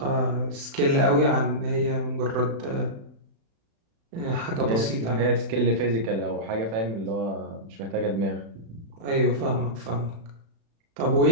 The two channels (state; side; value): late; left; 36 ms